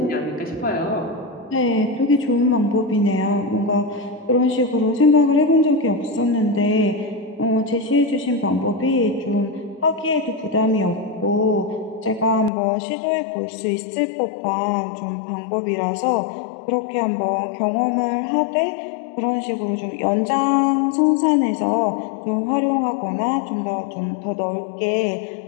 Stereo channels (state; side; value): drops out; right; at 12.5 s